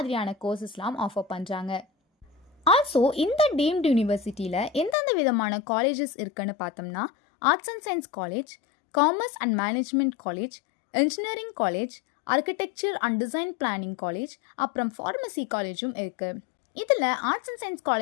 கோர்சஸ்லாம் offer பண்ணுறாங்க. Also இந்த deemed யூனிவர்சிட்டியில் எந்தெந்த விதமான colleges இருக்குன்னு பார்த்தோம்னா arts and science college, commerce and management college, engineering college, architecture and design planning college, அப்புறம் ஃபார்மசி காலேஜும் இருக்குது. இதில் ஆர்ட்ஸ் அண்ட் சயின்ஸ்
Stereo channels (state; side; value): drops out; right; at 5.0 s